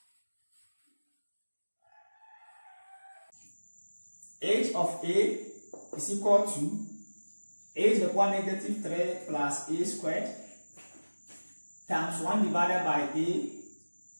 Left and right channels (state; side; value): inverted; both; correlation -1.00